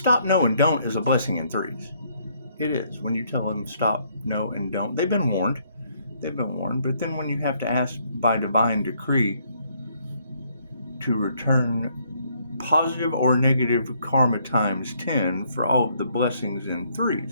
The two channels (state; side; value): inverted; both; correlation -0.69